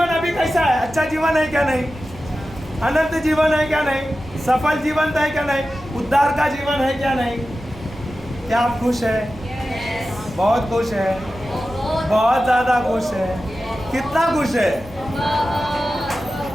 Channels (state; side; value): noise; left; hum, 19 dB below the sound